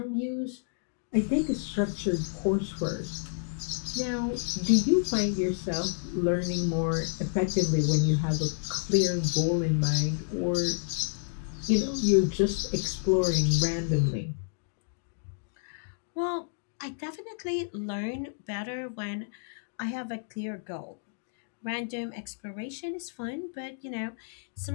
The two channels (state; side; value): silent; right; digital silence